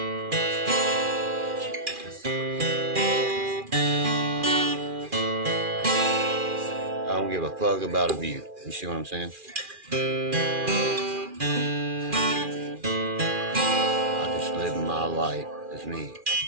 I don't give a fuck about a view. You see what I'm saying? I just live my life as me.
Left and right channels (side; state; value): left; late; 2.4 ms